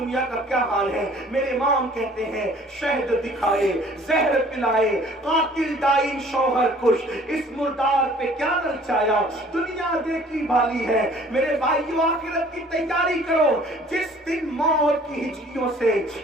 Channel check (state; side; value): normal; both; correlation 0.53